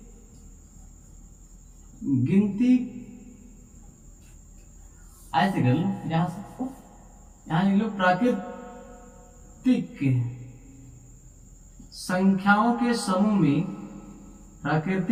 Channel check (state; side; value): identical; both; correlation 1.00